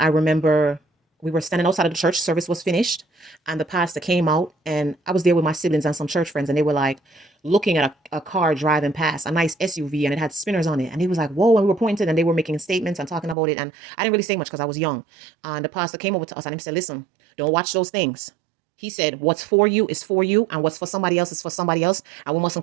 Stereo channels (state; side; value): drops out; left; at 13.4 s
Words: remember we were standing outside of the church, service was finished, and the pastor came out, and I was there with my siblings and some church friends, and they were like looking at a car driving past, a nice SUV, and it had spinners on it. And he was like, whoa, and we were pointed, and they were making statements and talking about it. And I didn't really say much because I was young. And the pastor came over to us and he said, listen, don't watch those things. He said, what's for you is for you, and what's for somebody else is for somebody else, and we